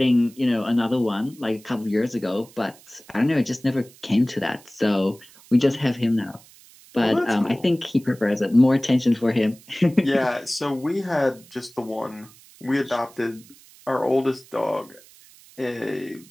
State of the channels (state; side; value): noise; right; hiss, 24 dB below the sound